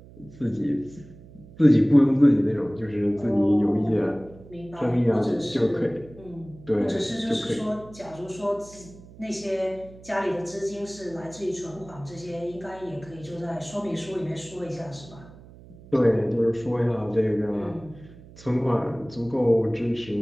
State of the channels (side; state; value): right; noise; hum, 20 dB below the sound